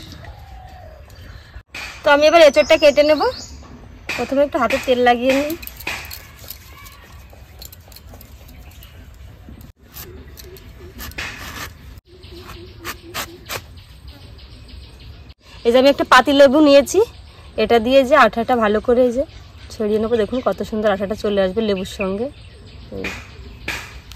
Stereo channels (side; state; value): both; identical; correlation 1.00